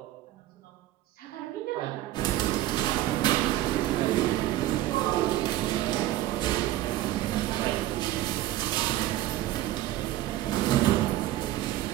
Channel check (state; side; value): quieter; left; 14.9 dB